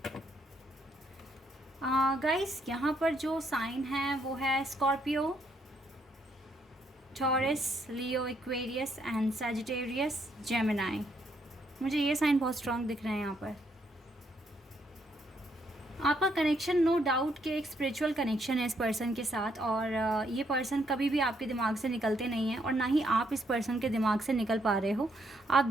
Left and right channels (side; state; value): both; normal; correlation 0.73